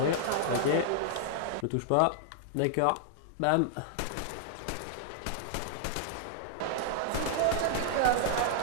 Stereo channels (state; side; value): different; both; correlation -0.01